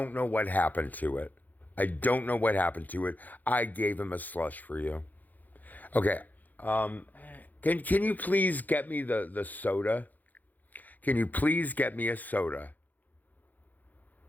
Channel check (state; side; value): late; right; 0.082 ms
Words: know what happened to it. I don't know what happened to it. I gave him a slush for you. Okay. Can you please get me the soda? Can you please get me a soda?